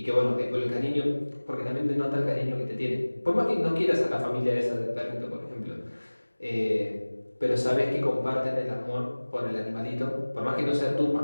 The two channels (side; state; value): both; inverted; correlation -1.00